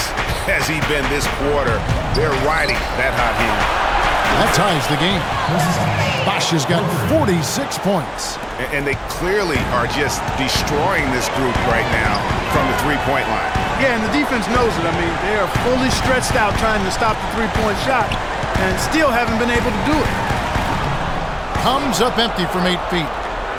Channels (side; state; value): both; identical; correlation 1.00